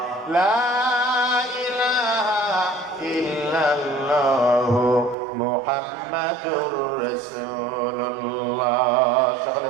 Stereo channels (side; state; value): left; drops out; at 5.2 s